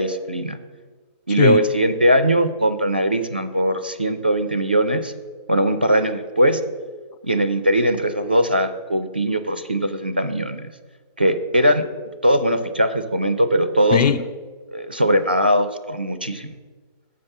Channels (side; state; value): both; inverted; correlation -0.70